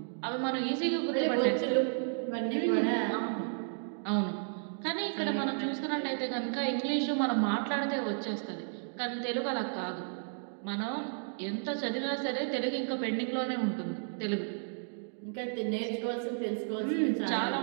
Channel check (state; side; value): silent; left; digital silence